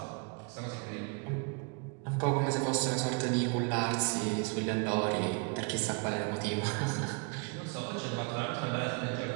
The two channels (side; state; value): left; quieter; 33.9 dB